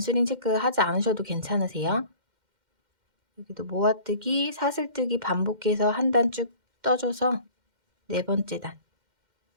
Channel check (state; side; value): late; left; 2.1 ms